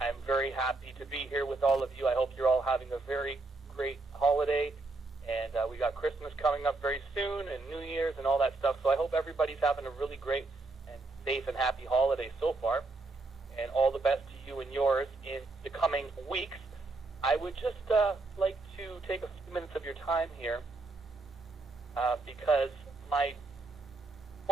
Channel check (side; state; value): left; quieter; 3.3 dB